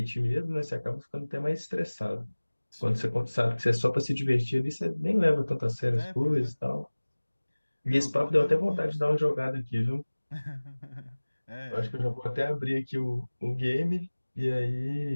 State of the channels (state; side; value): inverted; both; correlation -1.00